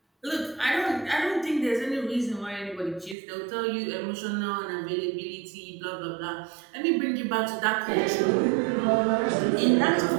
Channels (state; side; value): drops out; left; at 3.2 s